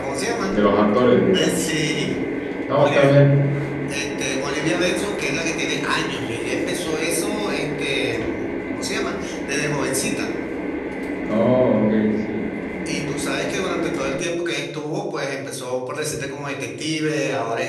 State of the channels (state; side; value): identical; both; correlation 1.00